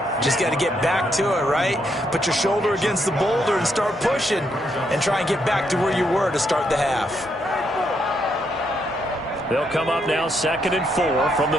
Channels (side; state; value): both; normal; correlation 0.77